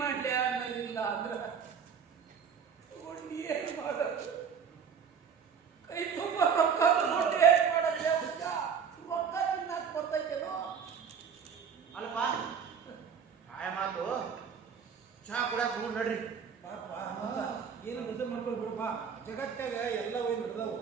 ಮಾಡ್ಲೆ ಅನ್ನೋದಿಲ್ಲ ಅಂದ್ರ ಏನು ಮಾಡೋದು? ಕೈ ತುಂಬ ರೊಕ್ಕ ತಗೊಂಡು ಏನು ಮಾಡೋದು? ರೊಕ್ಕ ತಿನ್ನಕ್ ಬರ್ತೈತೇನೋ? ಅಲ್ಪ ಆಯ ಮಾತು ಚಹಾ ಕುಡಿಯಾಕ ಹೋಗಿ ನಡ್ರಿ. ಏನು ಬದಲು ಮಾಡ್ಕೊಂಡು ಬಿಡಪ್ಪ. ಜಗತ್ತಾಗ ಎಲ್ಲ ಹೋಗಿ ನಡೆದವು.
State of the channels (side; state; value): left; quieter; 6.9 dB